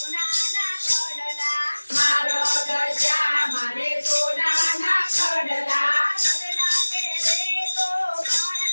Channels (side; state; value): both; inverted; correlation -1.00